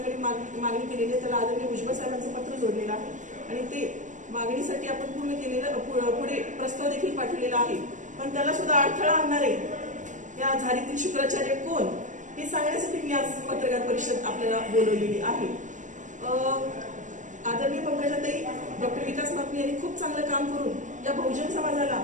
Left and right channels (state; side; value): late; left; 0.36 ms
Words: मागणी केलेली आहे. त्याला आदरणीय भुजबळ साहेबांचं पत्र जोडलेलं आहे आणि ते मागणीसाठी आपण पूर्ण केलेलं पुढे प्रस्ताव देखील पाठवलेला आहे. पण त्याला सुद्धा अडथळा आणणारे या झारीतील शुक्राचार्य कोण हे सांगण्यासाठी मी आज पत्रकार परिषद आपल्याला बोलवलेली आहे. आदरणीय पंकजाताई डॉक्टर विकास महात्मे यांनी खूप चांगलं काम करून या बहुजन समाजाला